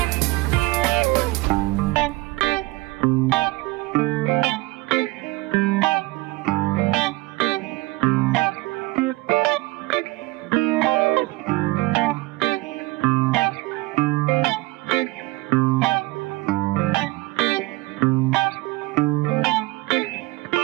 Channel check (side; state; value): left; quieter; 21.7 dB